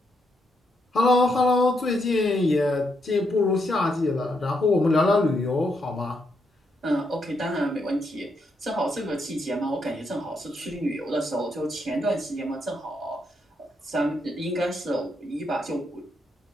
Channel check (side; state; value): both; normal; correlation 0.79